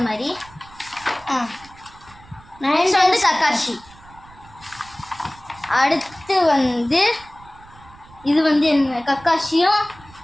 மாதிரி. நெக்ஸ்ட் வந்து கக்காஷி. அடுத்து வந்து இது வந்து என்ன? கக்காஷியும்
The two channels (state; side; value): noise; right; rumble, 23 dB below the sound